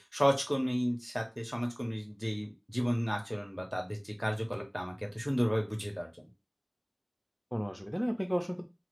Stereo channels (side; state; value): both; identical; correlation 1.00